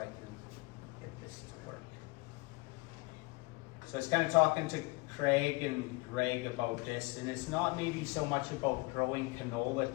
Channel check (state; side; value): quieter; right; 25.3 dB